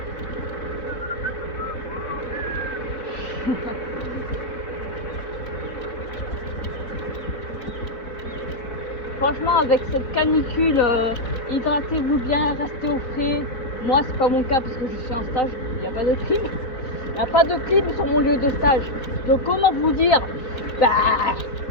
Franchement, avec cette canicule, hydratez-vous bien, restez au frais. Moi, c'est pas mon cas parce que je suis en stage, il n'y a pas de clim. Il n'y a pas de clim sur mon lieu de stage. Donc, comment vous dire?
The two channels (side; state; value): right; late; 4.1 ms